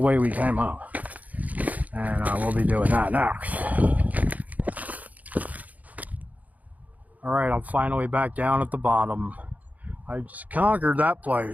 we came up. And we'll be doing that next. Alright, I'm finally back down at the bottom. I just conquered that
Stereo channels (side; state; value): left; late; 0.076 ms